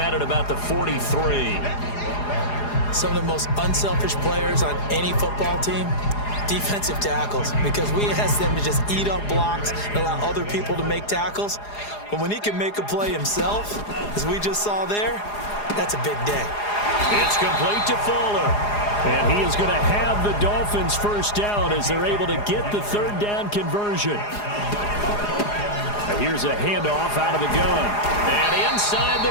at about the 43. Some of the most unselfish players on any football team, defensive tackles, because we ask them to just eat up blocks and allow other people to make tackles. But when he can make a play himself, as we just saw there, that's a big day. It's complete to Fuller. And he is going to have the Dolphins first down as they're able to get the third down conversion. Here's a handoff out of the gun. And inside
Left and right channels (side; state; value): right; late; 4.8 ms